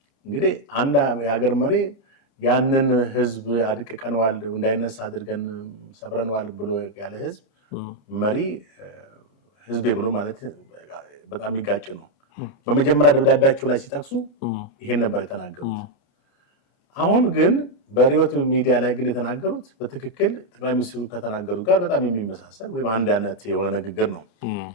እንግዲህ አንድ የሀገር መሪ ያንን ህዝብ አድቅቀነዋል፣ እንዳይነሳ አድርገን ሰብረነዋል ብሎ ያለ ህዝብ መሪ ህዝቤ ብሎ ማለት በጣም የሚጋጭ ነው። በመጀመሪያ ደብዳቤያቸው ላይ ሲጠቅሱ ይሄን ነበር የተናገሩት። አሁን ግን በሪዮት ሚዲያ ላይ ግን የተናገሩት በትክክል ጠቅላይ ሚኒስትሩ ከተናገሩት ጋር በጣም የሚመሳሰል ወይም አንድ አይነት የሆነ ንግግር ነው።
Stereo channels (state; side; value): late; right; 30 ms